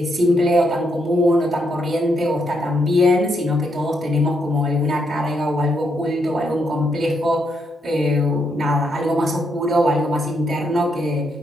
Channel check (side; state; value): both; normal; correlation 0.78